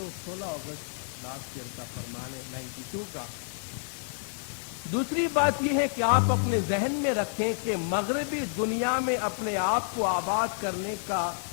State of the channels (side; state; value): right; silent; digital silence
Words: 16 अगस्त लास्ट ईयर का फरमान है 92 का। दूसरी बात यह है कि आप अपने जहन में रखें कि मगरबी दुनिया में अपने आप को आबाद करने का